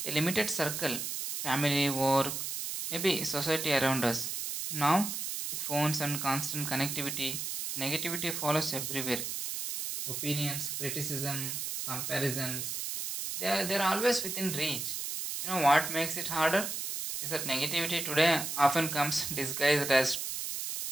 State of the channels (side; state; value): right; noise; hiss, 4 dB below the sound